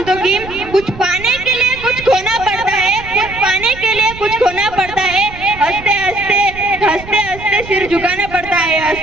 की कुछ पाने के लिए कुछ खोना पड़ता है, कुछ पाने के लिए कुछ खोना पड़ता है, हंसते हंसते हंसते हंसते सिर झुकाना पड़ता है,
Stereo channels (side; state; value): right; noise; rumble, 15 dB below the sound